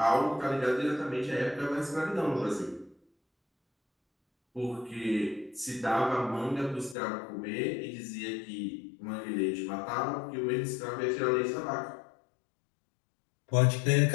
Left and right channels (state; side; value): drops out; right; at 7.0 s